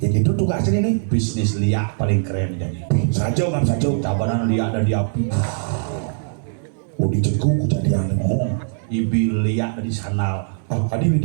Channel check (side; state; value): left; silent; 65 dB below the other